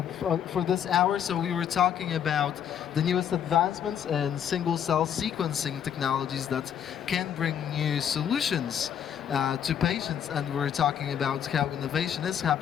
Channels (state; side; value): quieter; right; 8.9 dB